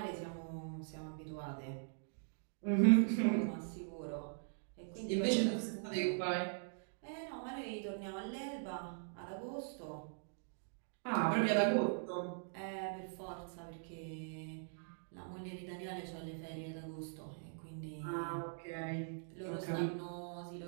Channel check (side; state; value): left; silent; digital silence